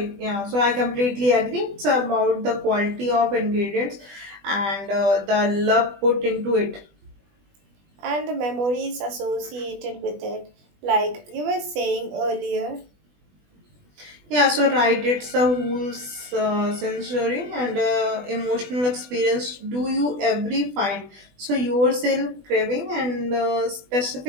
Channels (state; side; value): late; left; 20 ms